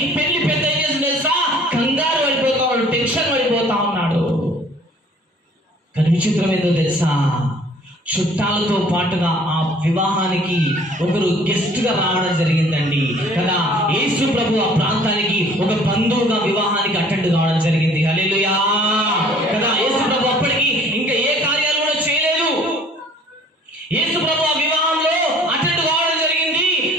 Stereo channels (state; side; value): normal; both; correlation 0.54